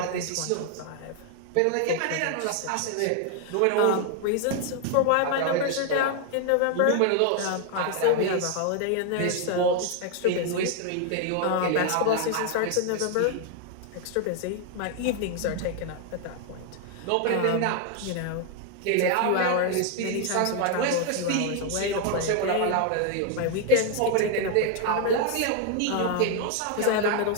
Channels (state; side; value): different; both; correlation 0.00